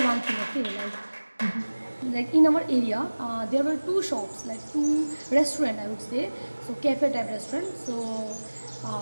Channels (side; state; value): both; inverted; correlation -1.00